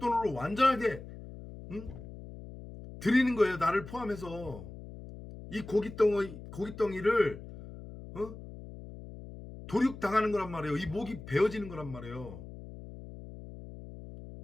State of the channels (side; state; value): left; noise; hum, 14 dB below the sound